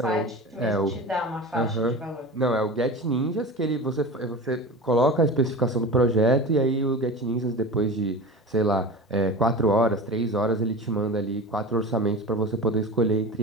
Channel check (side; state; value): both; normal; correlation 0.31